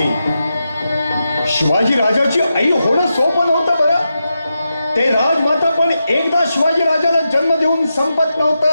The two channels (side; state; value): both; inverted; correlation -0.88